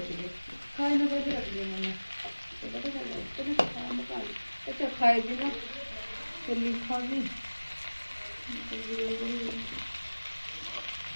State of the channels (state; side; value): inverted; both; correlation -1.00